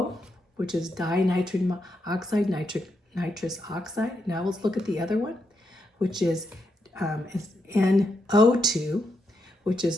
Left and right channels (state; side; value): normal; both; correlation 0.82